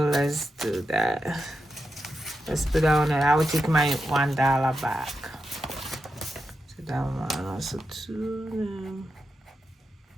let's do that. Let's put that on it. I will take my $1 back. So that one also 2.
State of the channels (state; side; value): normal; both; correlation 0.87